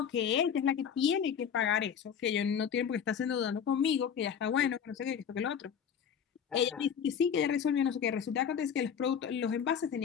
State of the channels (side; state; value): right; quieter; 7.8 dB